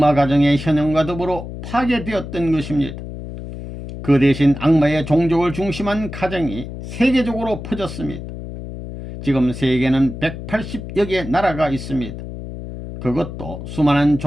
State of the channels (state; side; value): noise; left; hum, 10 dB below the sound